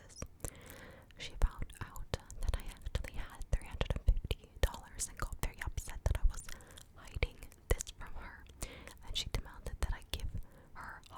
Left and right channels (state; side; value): identical; both; correlation 1.00